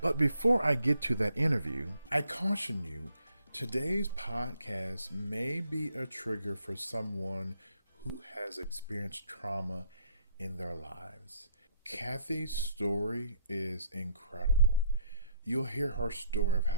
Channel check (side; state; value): both; inverted; correlation -0.67